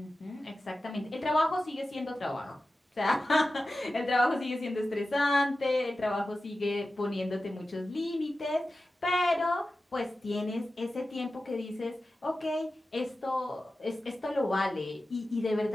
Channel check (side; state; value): both; normal; correlation 0.94